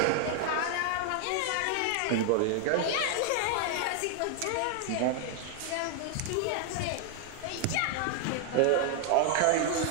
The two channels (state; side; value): different; both; correlation 0.00